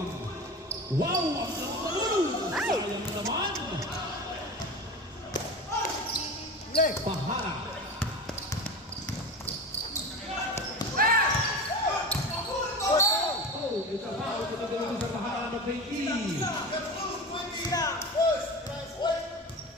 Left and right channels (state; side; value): normal; both; correlation 0.29